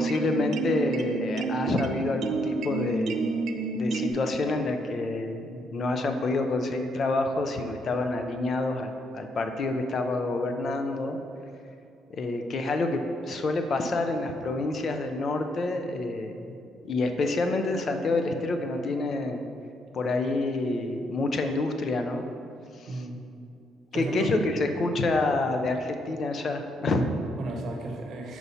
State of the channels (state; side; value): normal; both; correlation 0.75